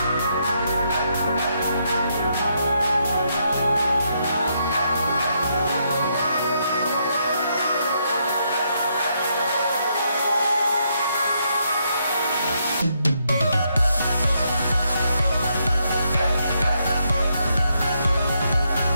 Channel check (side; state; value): both; inverted; correlation -0.77